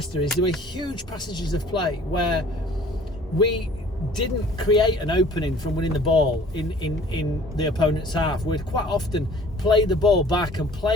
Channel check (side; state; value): both; normal; correlation 0.51